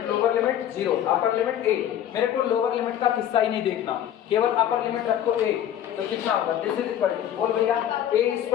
lower limit 0, upper limit a। मेरे को लोअर लिमिट का किस्सा ही नहीं देखना, केवल अपर लिमिट रखो a, तो कितना होगा? दिस इज इक्वल टू बोल भैया a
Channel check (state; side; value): quieter; right; 10.7 dB